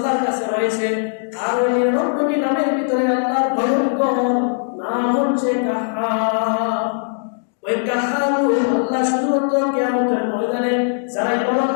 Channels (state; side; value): silent; right; digital silence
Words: কাছে রয়েছে। আর ওই 99টি নামের ভিতরে আল্লাহর ভয়ঙ্কর নাম হচ্ছে কাহার। ওই কাহার আল্লাহ শুধুমাত্র কিয়ামতের ময়দানে যারা